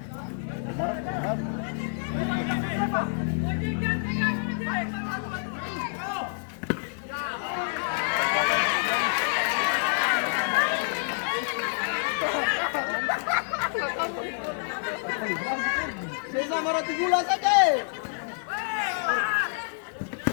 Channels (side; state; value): right; silent; 60 dB below the other